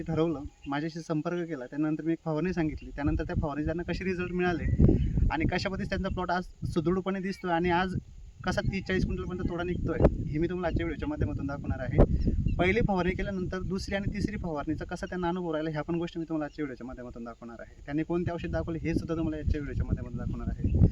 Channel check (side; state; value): both; identical; correlation 1.00